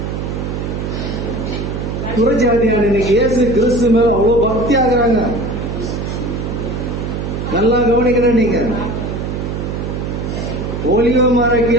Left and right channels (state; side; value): noise; right; hum, 4 dB below the sound